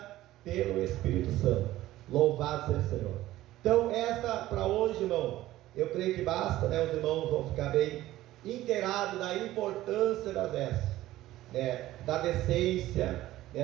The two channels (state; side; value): quieter; left; 15.4 dB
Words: pelo Espírito Santo. Louvado seja o Senhor. Então, esta para hoje, irmão, eu creio que basta, né? Os irmãos vão ficar bem inteirados da importância das vestes, né? Da decência,